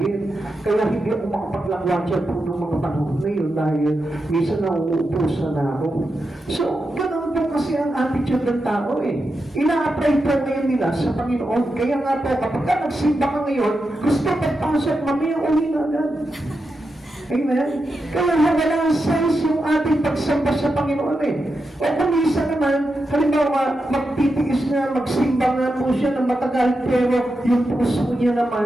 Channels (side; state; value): both; normal; correlation 0.88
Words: Kaya hindi ako makapaglangwatsa po ng mga panahon na yun dahil minsan nauupusan na ako. So, ganun po kasi ang attitude ng tao eh. Ina-apply po ngayon nila sa Panginoon. Kaya nga po, kapag ka nagsimba ka ngayon, gusto pagpasok, mamaya uli na agad. Amen? Kaya walang sense yung ating pagsamba sa Panginoon eh. O kung minsan naman, halimbawa, magtitiis na, magsimba nga po siya ng matagal, pero yung puso niya